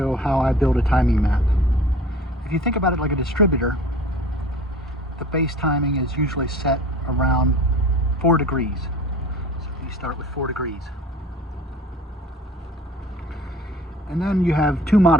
how I build a timing map. If you think about it like a distributor, the base timing is usually set around 4 degrees. So you start with 4 degrees. And then you have two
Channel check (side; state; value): both; normal; correlation 0.44